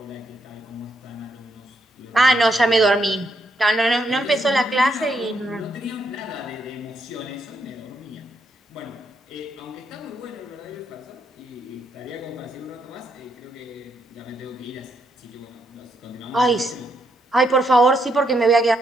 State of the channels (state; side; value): normal; both; correlation 0.77